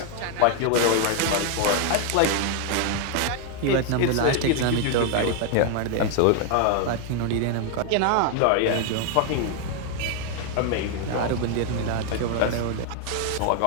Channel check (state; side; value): different; both; correlation 0.01